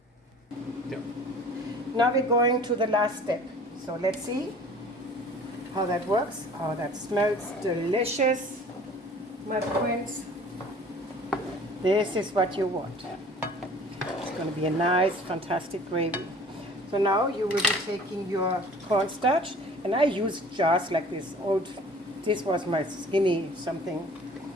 Yep. Now we're going to the last step. So let's see how that works. Oh, that smells delicious, my friends. This is what you want. It's going to be a nice, fantastic gravy. So now you will be taking your cornstarch, and I use jars like this old. This was my skinny something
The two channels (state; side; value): normal; both; correlation 0.48